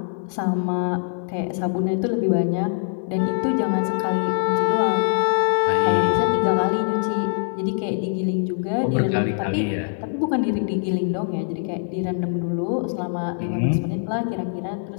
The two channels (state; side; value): silent; right; digital silence